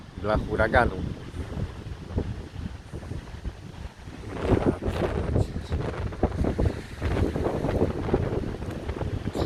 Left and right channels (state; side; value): identical; both; correlation 1.00